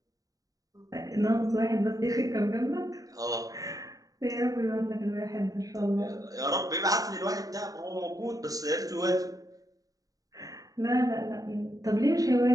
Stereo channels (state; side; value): late; left; 0.17 ms